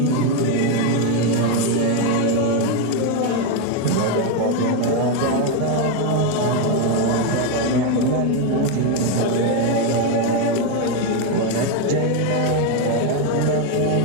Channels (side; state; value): both; different; correlation 0.02